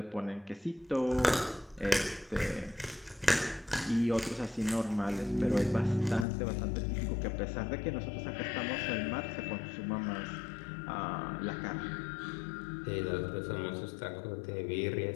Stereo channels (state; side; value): drops out; right; at 6.2 s